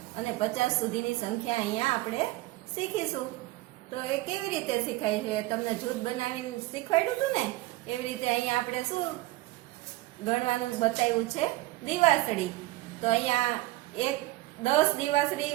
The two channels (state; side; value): quieter; left; 18.9 dB